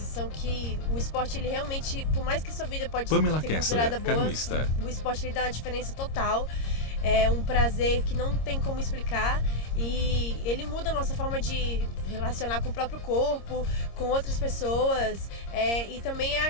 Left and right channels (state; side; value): late; right; 26 ms